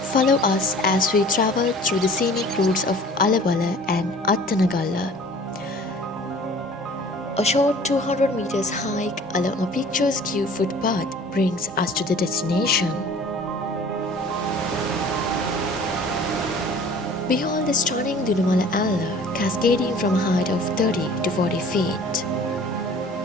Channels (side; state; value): both; normal; correlation 0.48